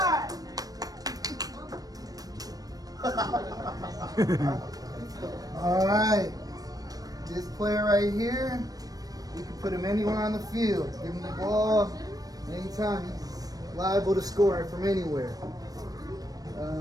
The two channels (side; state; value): left; late; 0.18 ms